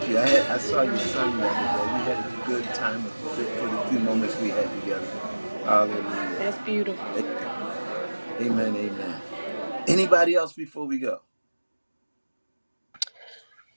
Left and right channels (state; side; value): inverted; both; correlation -1.00